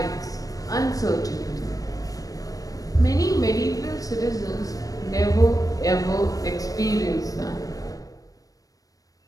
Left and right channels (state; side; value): late; right; 0.17 ms